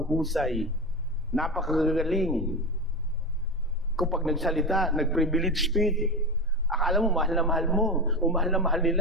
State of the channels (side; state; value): both; normal; correlation 0.20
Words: napakagagaling. Kapag nagsalita, nag-privilege speech, akala mo mahal na mahal mo, o mahal na mahal